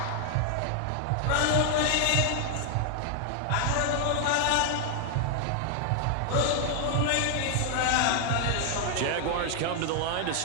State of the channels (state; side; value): different; both; correlation 0.00